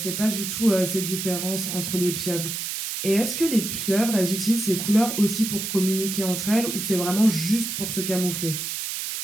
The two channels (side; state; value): right; noise; hiss, 4 dB below the sound